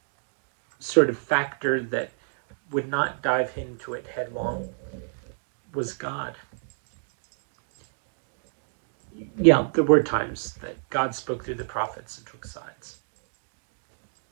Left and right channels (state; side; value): silent; left; digital silence